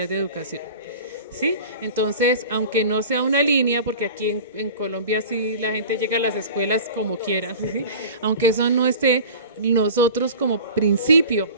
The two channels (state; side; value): inverted; both; correlation -0.38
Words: de educación. ¿Sí? Entonces, aunque no sea una línea, porque aquí en Colombia sí la gente llega a las escuelas como quiera, ¿sí? Aunque eso no esté, nosotros como principio,